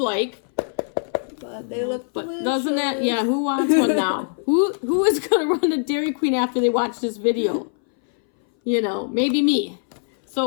But they look delicious. Doesn't that, yeah, who wants one now? Who is going to run to Dairy Queen after they watch this video? You know, maybe me.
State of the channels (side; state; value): right; silent; 61 dB below the other